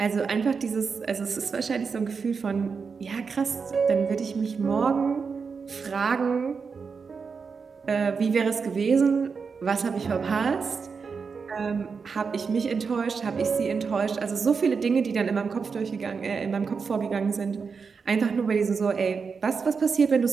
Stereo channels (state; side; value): quieter; left; 5.4 dB